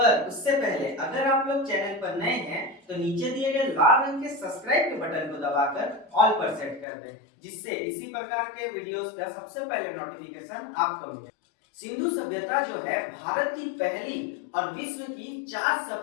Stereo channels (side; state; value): right; drops out; at 6.9 s